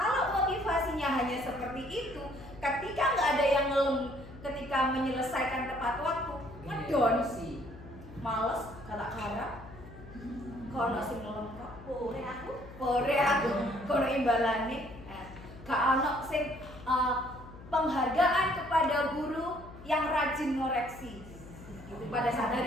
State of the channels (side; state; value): left; noise; hum, 17 dB below the sound